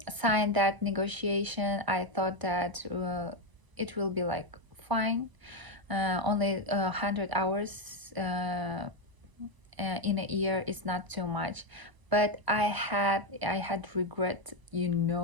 that negotiation. I thought that it will be like fine, only 100 hours in a year is not too much. But I had regret,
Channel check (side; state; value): left; late; 1.0 ms